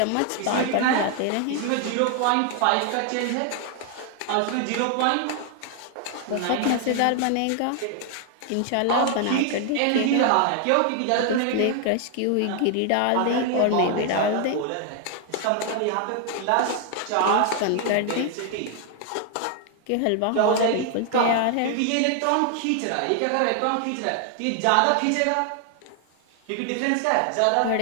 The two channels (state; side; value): different; both; correlation 0.00